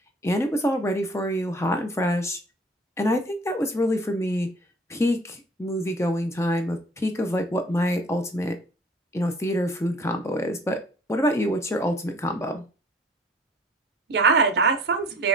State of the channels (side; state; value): both; normal; correlation 0.52